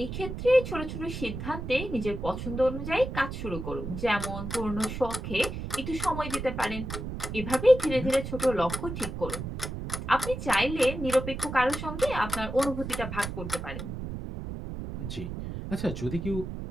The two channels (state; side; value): noise; right; rumble, 6 dB below the sound